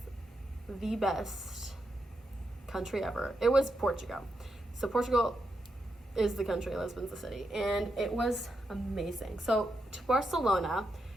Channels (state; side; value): normal; both; correlation 0.84